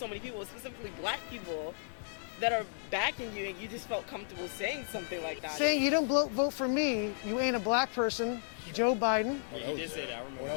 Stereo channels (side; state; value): right; silent; digital silence